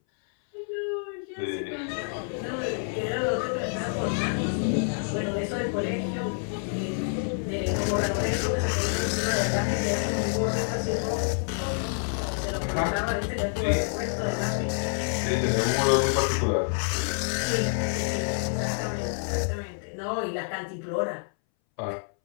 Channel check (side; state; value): right; silent; 60 dB below the other